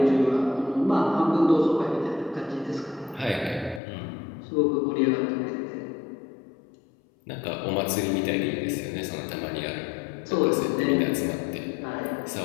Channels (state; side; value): drops out; right; at 3.8 s